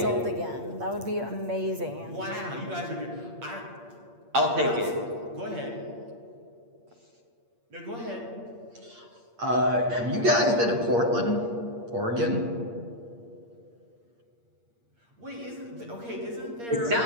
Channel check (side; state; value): left; late; 8.6 ms